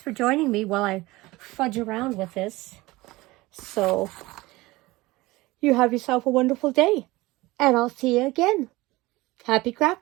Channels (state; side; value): quieter; left; 20.3 dB